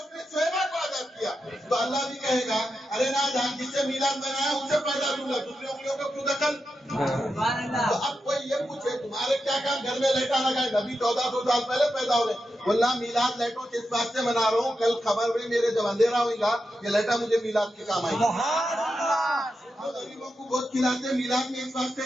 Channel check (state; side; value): normal; both; correlation 0.88